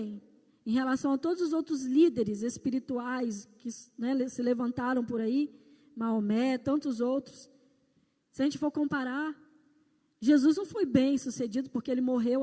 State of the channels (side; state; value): both; identical; correlation 1.00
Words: em relação a todos os outros líderes espirituais que se levantaram por aí, Maomé, tantos outros, se a gente for comparar, Jesus não foi bem sucedido porque ele